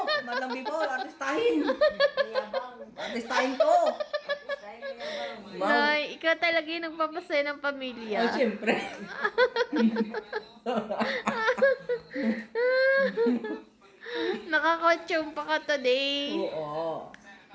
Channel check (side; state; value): both; identical; correlation 1.00